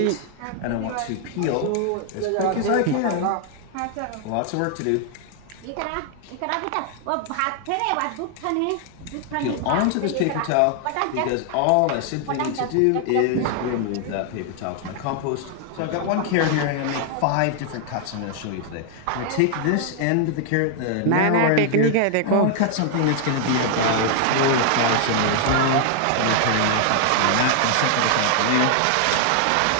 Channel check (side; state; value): both; different; correlation 0.00